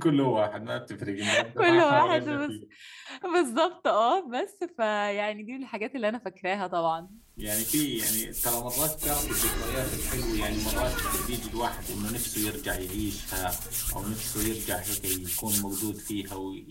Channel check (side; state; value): both; identical; correlation 1.00